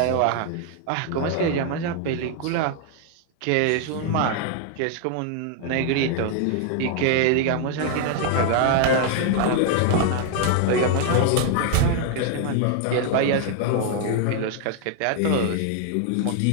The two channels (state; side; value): different; both; correlation 0.00